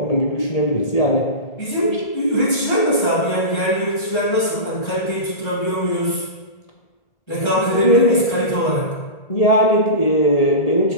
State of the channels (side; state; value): right; late; 1.3 ms